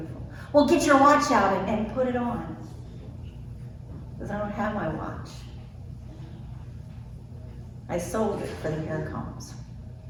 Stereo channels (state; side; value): identical; both; correlation 1.00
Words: Well, get your watch out and put it on. Because I don't have my watch. I sold it for the hair combs.